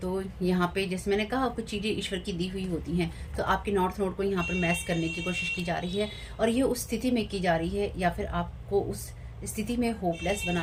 तो यहाँ पे जैसे मैंने कहा कुछ चीज़ें ईश्वर की दी हुई होती हैं, तो आपके नॉर्थ नोड को यहाँ पर मैस करने की कोशिश की जा रही है और ये उस स्थिति में की जा रही है या फिर आपको उस स्थिति में होपलेस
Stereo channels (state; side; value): identical; both; correlation 1.00